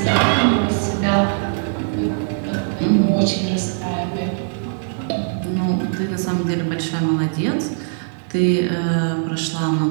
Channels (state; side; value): silent; left; digital silence